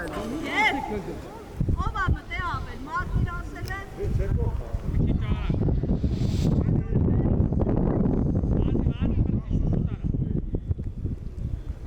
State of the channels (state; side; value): identical; both; correlation 1.00